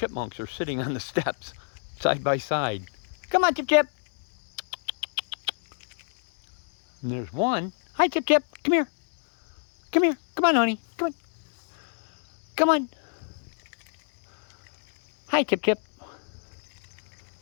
are sitting on the steps, side by side. Come on, Chip Chip. And there's one. Hi, Chip Chip. Come here. Come here. Come on, honey. Come on. Come on. Hi, Chip Chip.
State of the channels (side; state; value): right; silent; 59 dB below the other